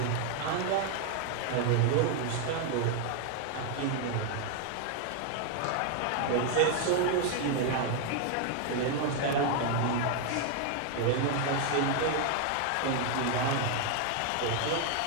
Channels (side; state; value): both; different; correlation 0.00